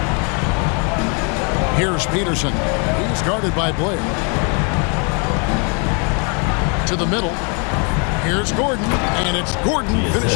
Here's Peterson. He's guarded by Blair. To the middle. Here's Gordon. And it's Gordon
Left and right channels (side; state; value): right; quieter; 36.3 dB